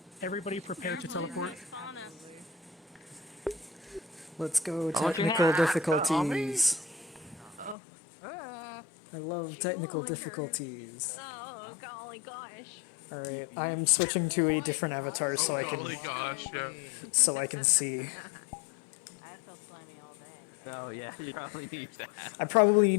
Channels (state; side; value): drops out; right; at 7.8 s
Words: everybody prepare to teleport. Let's go technical difficulties. I love technical difficulties. Oh, golly gosh. All right, I am switching to a different avatar so I can see. I feel slimy all day. Oh yeah, you probably need that. I probably